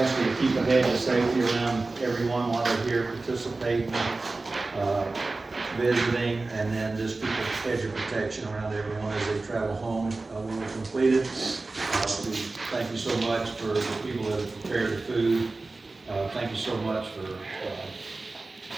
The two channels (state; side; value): quieter; left; 3.4 dB